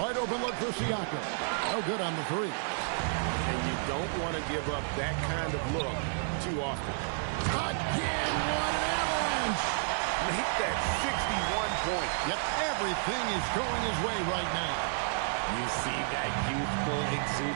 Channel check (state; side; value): silent; left; digital silence